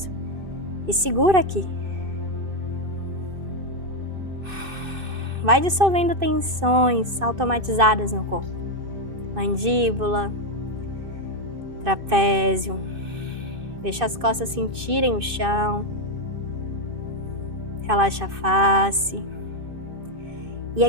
e segura aqui. Vai dissolvendo tensões automatizadas no corpo. Mandíbula, trapézio. Deixa as costas sentirem o chão. Relaxa a face. E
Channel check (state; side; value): late; left; 2.6 ms